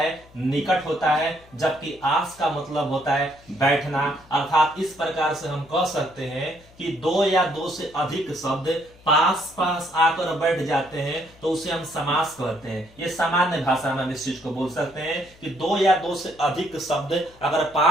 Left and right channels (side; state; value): left; noise; hum, 26 dB below the sound